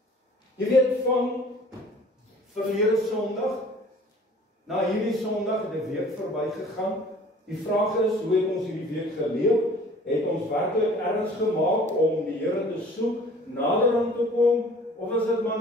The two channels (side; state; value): both; normal; correlation 0.50